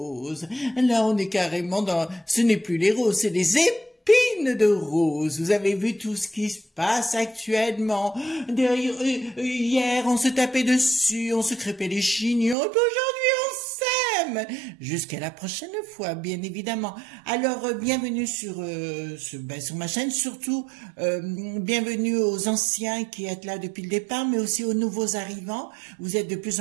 Là on est carrément dans, ce n'est plus les roses, c'est les épines de rose. Vous avez vu tout ce qui se passe actuellement. Hier, on se tapait dessus, on se crêpait les chignons, et puis aujourd'hui, on s'aime. Jusqu'à la prochaine fois, bien évidemment. Alors, bienvenue sur ma chaîne, surtout, bienvenue aux anciens qui êtes là depuis le départ, mais aussi aux nouveaux arrivants. Vous êtes de plus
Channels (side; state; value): left; drops out; at 12.6 s